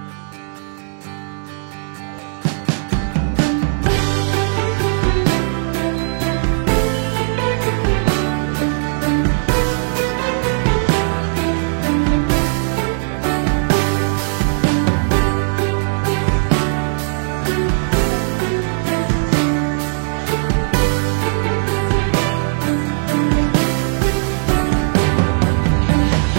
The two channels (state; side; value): silent; left; 67 dB below the other